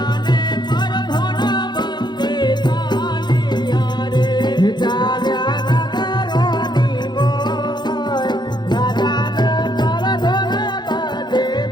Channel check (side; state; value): right; late; 0.21 ms